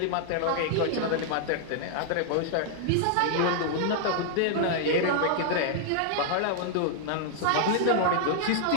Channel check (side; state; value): both; different; correlation 0.00